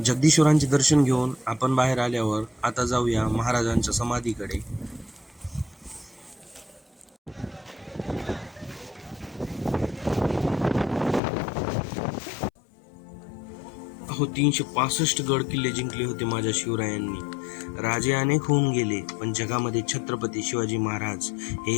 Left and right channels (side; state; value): right; drops out; at 11.2 s